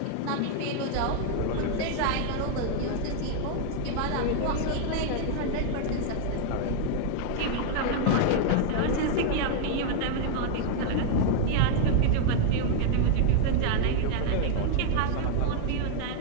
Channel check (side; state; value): both; different; correlation 0.00